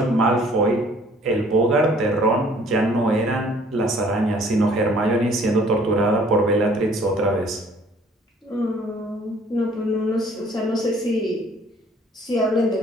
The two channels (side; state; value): both; normal; correlation 0.57